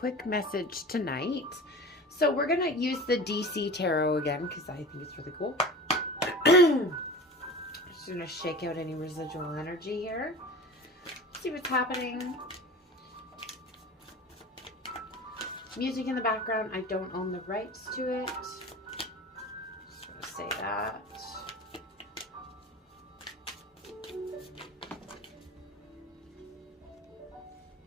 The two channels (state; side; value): normal; both; correlation 0.35